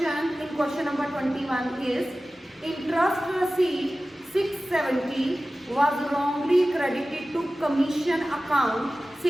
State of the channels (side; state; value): both; normal; correlation 0.96